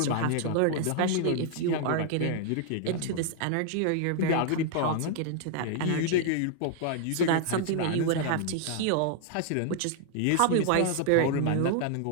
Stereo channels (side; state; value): both; different; correlation 0.00